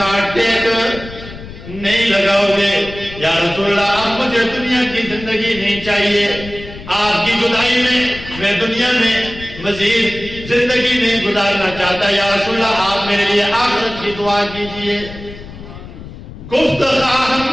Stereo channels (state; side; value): noise; left; rumble, 14 dB below the sound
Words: ٹیک نہیں لگاؤ گے. یا رسول اللہ اب مجھے دنیا کی زندگی نہیں چاہیے، آپ کی جدائی میں دنیا میں مزید زندگی نہیں گزارنا چاہتا. یا رسول اللہ آپ میرے لیے آخرت کی دعا کیجئے. گفت